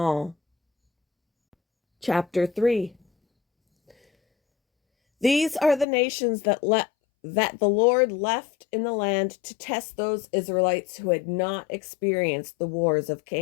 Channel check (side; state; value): right; drops out; at 5.9 s